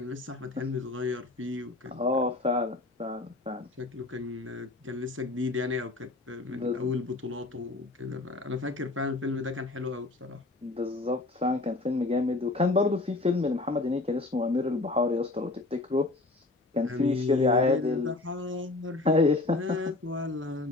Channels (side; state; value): right; quieter; 3.0 dB